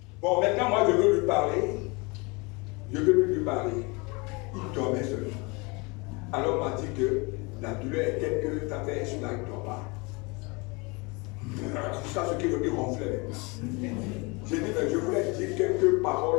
Bon, maintenant, moi, je veux lui parler. Je veux plus lui parler. Il dormait seulement. Alors, on m'a dit que la douleur est telle que ta fait sur la il ne dort pas. Jusqu'à ce qu'il ronflait. J'ai dit, mais je voulais dire quelques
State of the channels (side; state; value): right; quieter; 28.0 dB